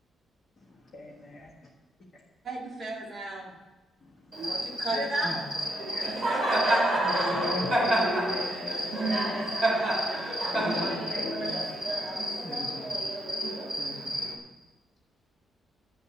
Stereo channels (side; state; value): both; normal; correlation 0.78